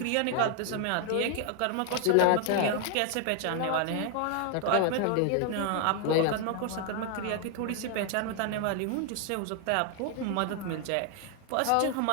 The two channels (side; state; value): both; different; correlation 0.00